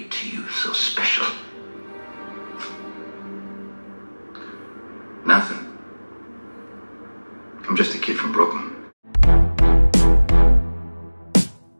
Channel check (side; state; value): both; inverted; correlation -1.00